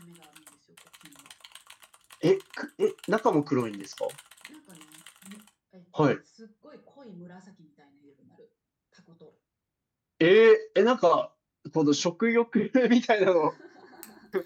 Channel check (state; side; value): identical; both; correlation 1.00